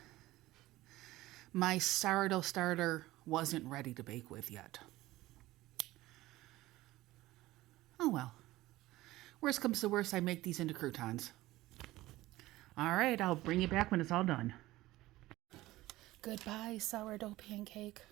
my sourdough starter wasn't ready to bake with yet. Oh well. Worst comes to worst, I make these into croutons. All right, I'll bring you back when it's all done. Goodbye, sourdough pancake.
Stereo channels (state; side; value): quieter; left; 17.5 dB